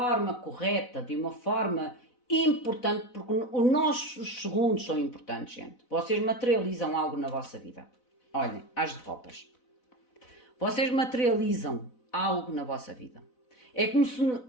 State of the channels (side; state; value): right; late; 4.0 ms